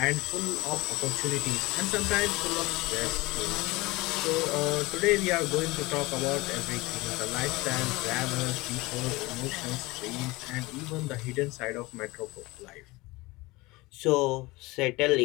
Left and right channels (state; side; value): quieter; right; 21.9 dB